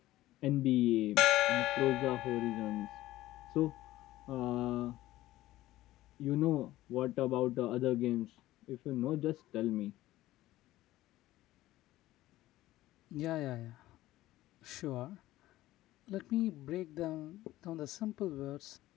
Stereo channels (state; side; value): quieter; right; 16.0 dB